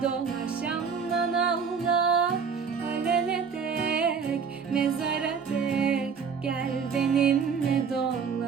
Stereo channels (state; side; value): quieter; left; 6.1 dB